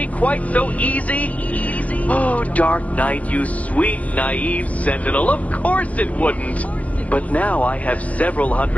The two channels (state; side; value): late; right; 0.067 ms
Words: quite so easy? Oh, Dark Knight, you sweet, naive sentinel, of course it wouldn't. But now I have several